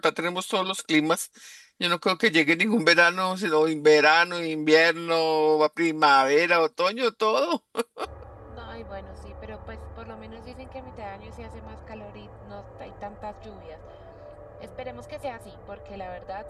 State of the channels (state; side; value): identical; both; correlation 1.00